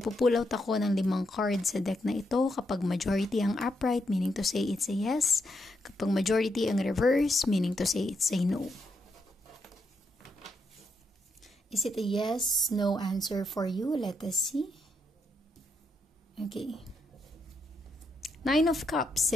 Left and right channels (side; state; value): both; normal; correlation 0.80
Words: out ako ng 5 cards sa deck na ito. Kapag majority ang upright, meaning to say it's a yes. Kapag majority ang reverse, meaning to say it's a no. Is it a yes, no answer for you? Let us see. Okay. 9 of Cups,